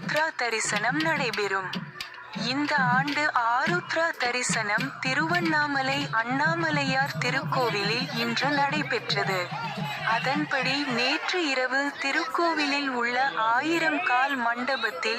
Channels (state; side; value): identical; both; correlation 1.00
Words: தரிசனம் நடைபெறும். இந்த ஆண்டு ஆருத்ரா தரிசனம் திருவண்ணாமலை அண்ணாமலையார் திருக்கோவிலில் இன்று நடைபெற்றது. அதன்படி நேற்று இரவு திருக்கோவிலில் உள்ள 1000 கால்